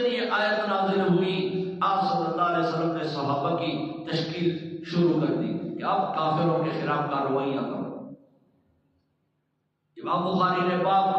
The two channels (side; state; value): both; identical; correlation 1.00